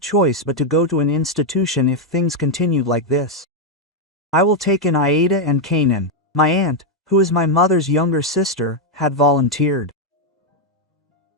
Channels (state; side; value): normal; both; correlation 0.01